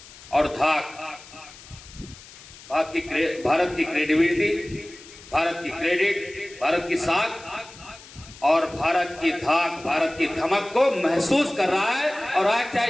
और धाक, भारत की क्रेडिबिलिटी, भारत की क्रेडिट, भारत की साख और भारत की धाक, भारत की धमक को महसूस कर रहा है। और आज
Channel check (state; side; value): noise; left; hiss, 19 dB below the sound